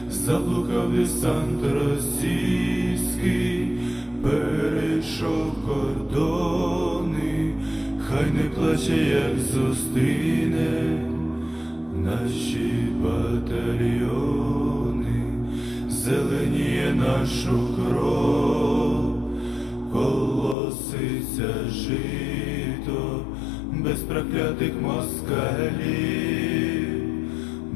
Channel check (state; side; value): drops out; right; at 20.6 s